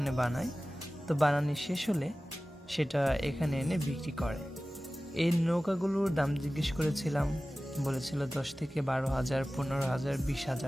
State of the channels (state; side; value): normal; both; correlation 0.97